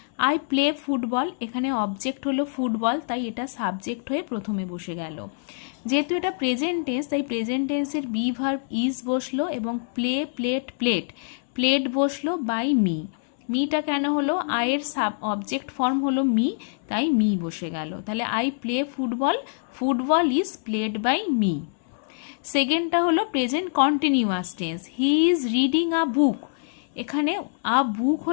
I play football, এখানে অবজেক্ট হলো ফুটবল, তাই এটা সাবজেক্ট হয়ে প্রথমে বসে গেল। যেহেতু এটা প্রেজেন্ট টেন্স তাই প্রেজেন্ট টেন্সের বি ভার্ব ইজ বসলো এবং প্লে প্লেট প্লেট প্লেট বসলো বাই মি। মিটা কেন হলো? আয়ের সাব অবজেক্ট ফর্ম হলো মি, তাই মি বসে গেল। তাহলে I play football, football is played by me. সেকেন্ডটা হলো present continuous tense. He is reading a বুক, এখানে আ বুক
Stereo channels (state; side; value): silent; right; 62 dB below the other